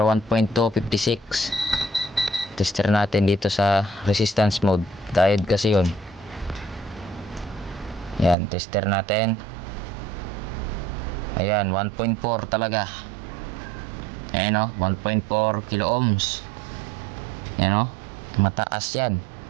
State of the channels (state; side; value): drops out; left; at 8.3 s